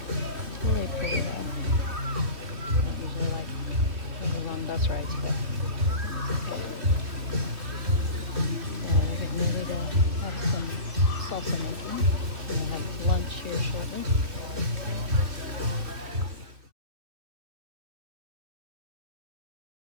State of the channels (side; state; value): left; late; 3.0 ms